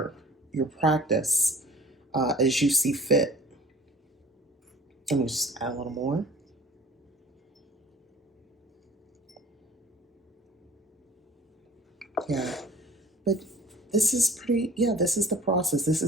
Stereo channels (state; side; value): normal; both; correlation 0.46